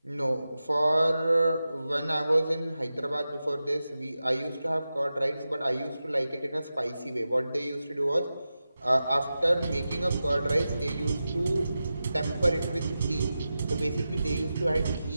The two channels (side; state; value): both; inverted; correlation -0.92